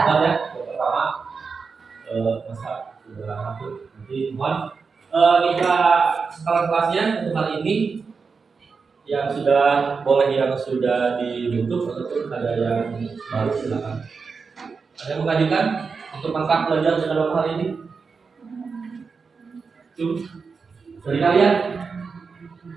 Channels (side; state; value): left; quieter; 5.1 dB